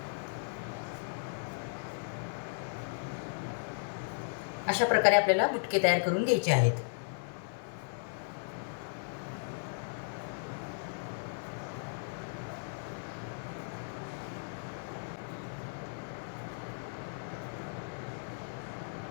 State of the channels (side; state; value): right; silent; digital silence